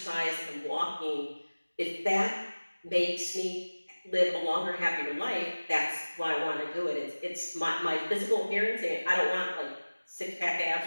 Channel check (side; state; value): both; inverted; correlation -1.00